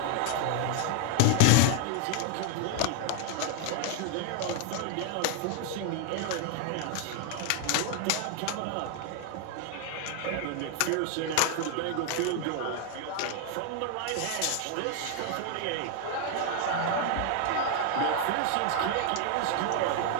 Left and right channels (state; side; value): different; both; correlation 0.00